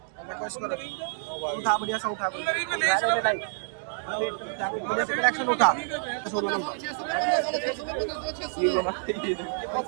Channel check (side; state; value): left; silent; digital silence